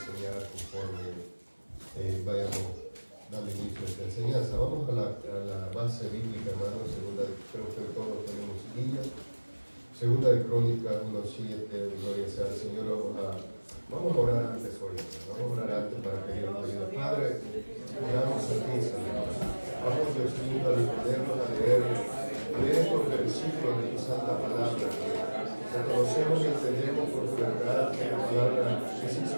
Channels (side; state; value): both; inverted; correlation -1.00